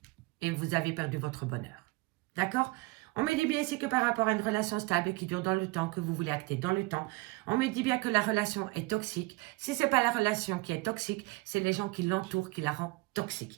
et vous avez perdu votre bonheur. D'accord? On me dit bien ici que par rapport à une relation stable qui dure dans le temps, que vous voulez acter dans le temps, on me dit bien que la relation est toxique. Si ce n'est pas la relation qui est toxique, c'est les gens qui l'entourent qui la rendent toxique.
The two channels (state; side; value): quieter; left; 23.7 dB